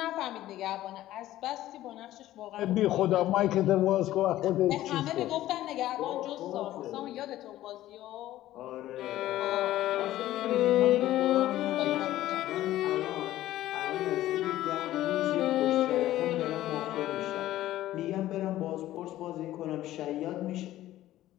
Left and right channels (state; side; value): quieter; right; 14.5 dB